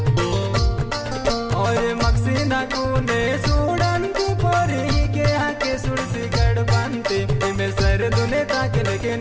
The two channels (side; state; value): both; identical; correlation 1.00